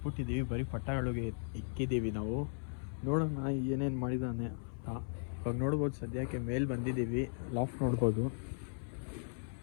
ಬರೀ ಪಟಾಗಳಿಗೆ ಇಕ್ಕಿದ್ದೀವಿ ನಾವು. ನೋಡೋಣ ಏನೇನು ಮಾಡಿದ್ದಾನೆ ಅಂತ. ಇವಾಗ ನೋಡ್ಬೋದು, ಸದ್ಯಕ್ಕೆ ಮೇಲೆ ಬಂದಿದ್ದೀವಿ. ಲಾಫ್ಟ್ ನೋಡ್ಬೋದು,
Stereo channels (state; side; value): silent; right; 53 dB below the other